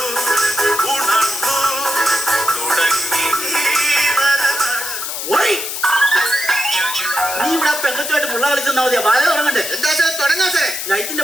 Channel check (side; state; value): left; noise; hiss, 5 dB below the sound